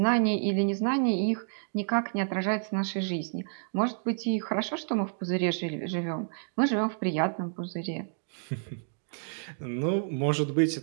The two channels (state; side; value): silent; left; digital silence